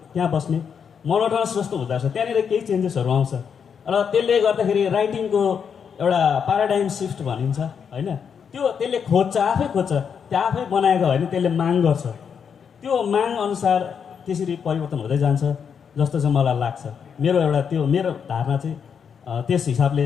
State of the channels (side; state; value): right; quieter; 7.0 dB